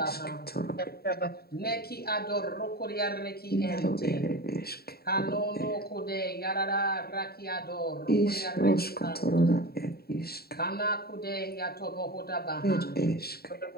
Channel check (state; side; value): late; right; 0.45 ms